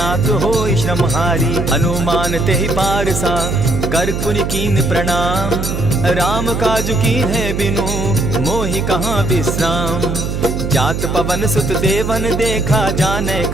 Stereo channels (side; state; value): right; noise; hum, 3 dB below the sound